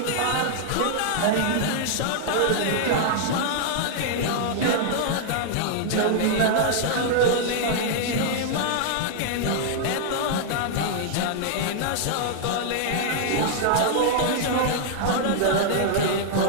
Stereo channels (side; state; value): both; different; correlation -0.01